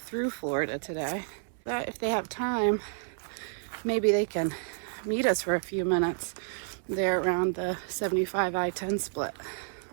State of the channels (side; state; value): left; silent; 58 dB below the other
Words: through Florida today. But if they have time, maybe they can meet us for a few minutes there around the 75 I-10 split